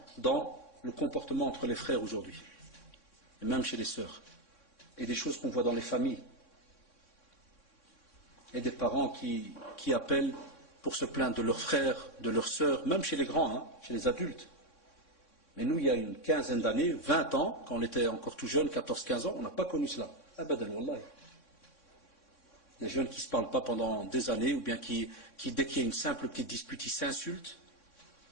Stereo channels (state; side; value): late; right; 3.6 ms